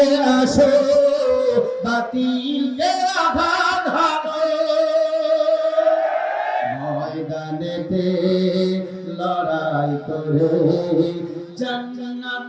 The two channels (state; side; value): identical; both; correlation 1.00